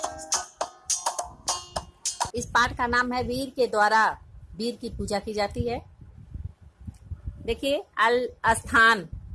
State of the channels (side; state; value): both; identical; correlation 1.00